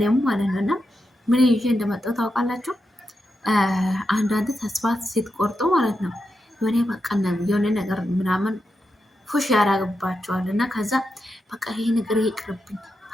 ማለት ነው። እና ምን ይዤ እንደመጣሁ ታውቃላችሁ? አንዳንድ ተስፋ ስትቆርጡ ማለት ነው የሆነ በቃ የሆነ ነገር ምናምን ፉሽ ያደርግባቸዋል እና ከዛ በቃ ይሄ ነገር ይቅርብኝ፣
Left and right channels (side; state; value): both; normal; correlation 0.87